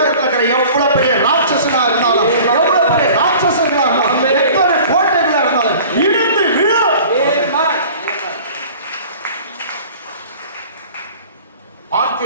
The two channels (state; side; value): inverted; both; correlation -0.45